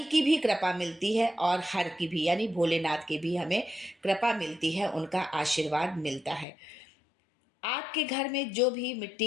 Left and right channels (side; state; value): right; drops out; at 6.5 s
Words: की भी कृपा मिलती है और हर की भी यानी भोलेनाथ की भी हमें कृपा मिलती है, उनका आशीर्वाद मिलता है। आपके घर में जो भी मिट्टी